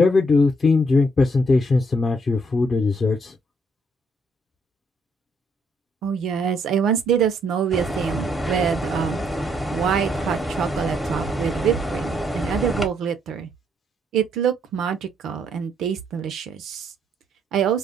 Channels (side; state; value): both; normal; correlation 0.71